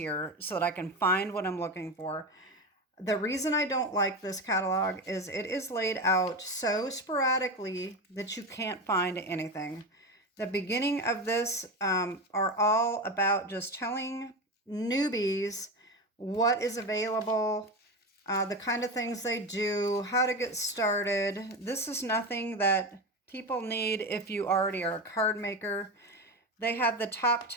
so that I can find what I'm looking for. The reason I don't like this catalog is it is laid out so sporadically that you can't find anything. The beginning of this are all about just telling newbies what is available, the kind of things they do, how to get started. This is nothing that people need if you already are a card maker. They have the top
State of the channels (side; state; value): both; normal; correlation 0.20